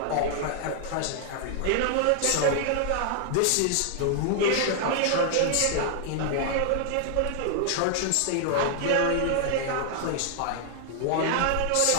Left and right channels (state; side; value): different; both; correlation 0.00